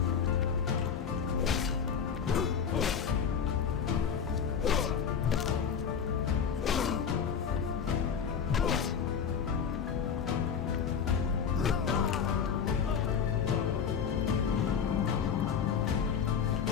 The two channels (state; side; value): quieter; right; 7.1 dB